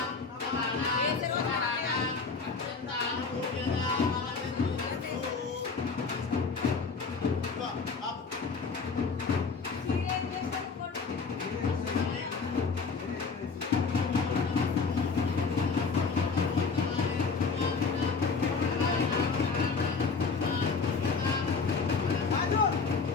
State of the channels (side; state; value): right; quieter; 4.8 dB